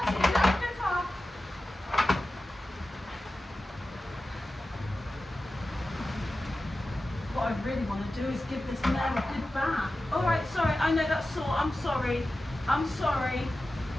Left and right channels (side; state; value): both; normal; correlation 0.94